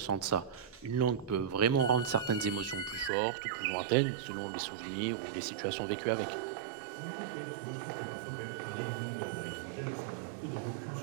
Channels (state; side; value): drops out; left; at 3.1 s